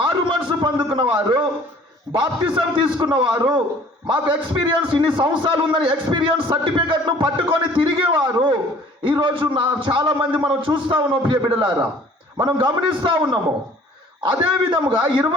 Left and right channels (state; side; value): normal; both; correlation 0.53